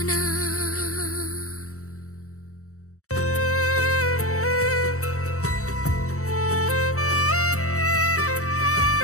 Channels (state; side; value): late; right; 0.65 ms